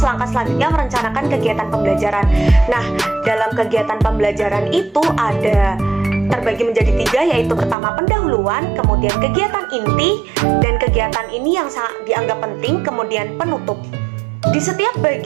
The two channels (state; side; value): drops out; left; at 7.8 s